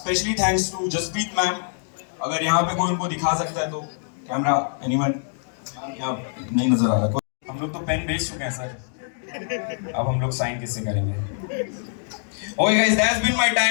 thanks to Jaspreet ma'am. अगर यहाँ पे कोई उनको दिखा सकता है तो कैमरा, एनीवन? यहाँ नहीं नजर आ रहा। हम लोग तो पेन बेच चुके हैं सर, अब हम लोग साइन किससे करेंगे? Okay guys, that's been my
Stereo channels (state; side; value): silent; right; digital silence